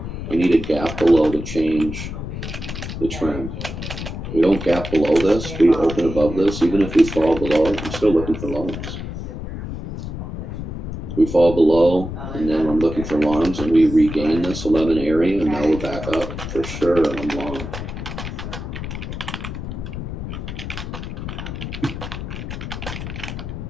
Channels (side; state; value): left; noise; rumble, 7 dB below the sound